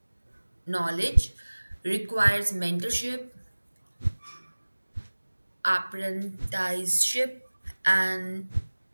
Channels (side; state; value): both; inverted; correlation -1.00